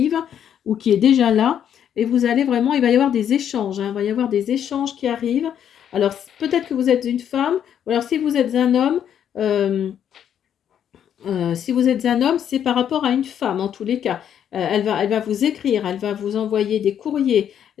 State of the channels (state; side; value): quieter; right; 9.3 dB